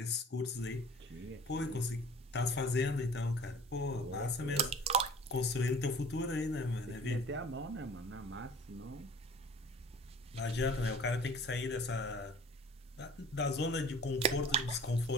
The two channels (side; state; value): both; normal; correlation 0.47